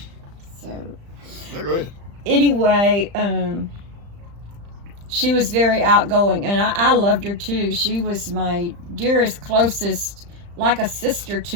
So, No, go ahead. anyway, she was very outgoing, and I loved her too. She was my dearest, closest, like a sister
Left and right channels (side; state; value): left; late; 35 ms